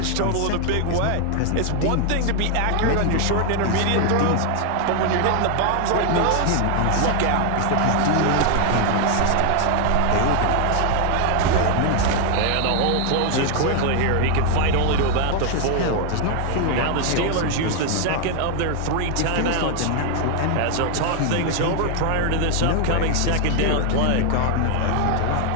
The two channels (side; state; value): both; different; correlation 0.00